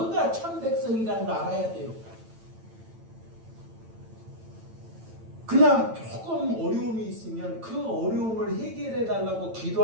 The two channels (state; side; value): late; left; 9.0 ms